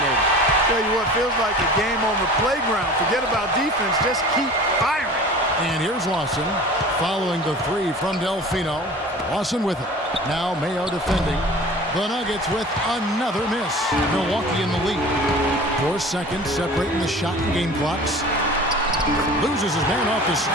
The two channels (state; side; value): normal; both; correlation 0.41